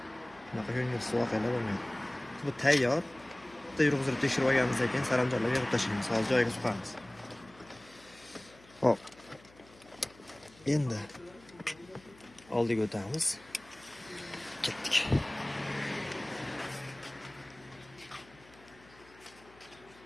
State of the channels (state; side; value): noise; left; hum, 25 dB below the sound